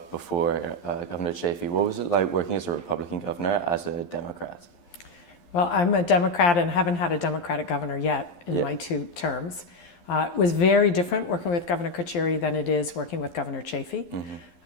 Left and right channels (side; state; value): right; late; 11 ms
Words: before Governor Chafee. What was it like working as a Republican governor as a Democrat? Well, I'm a Democrat and haven't had a Democratic governor yet in my 2 terms. It was very different working with Governor Carcieri than it is working with Governor Chafee.